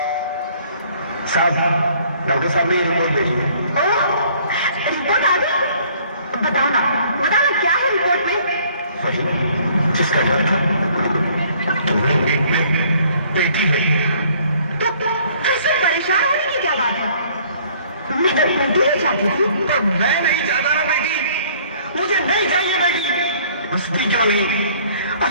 साहब, डॉक्टर साहब ने रिपोर्ट भेजी है। रिपोर्ट आ गई? बताना बताना क्या है रिपोर्ट में? वही जिसका डर था, तुम्हें एक बेटी है। तो फिर परेशान होने की क्या बात है? मैं तो बेटी ही चाहती थी। तो मैं नहीं चाहता ना बेटी, मुझे नहीं चाहिए बेटी। बसती क्यों नहीं?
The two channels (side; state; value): both; inverted; correlation -0.58